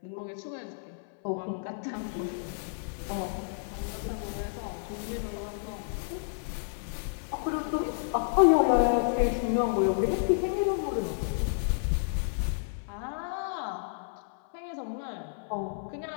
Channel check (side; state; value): right; silent; 57 dB below the other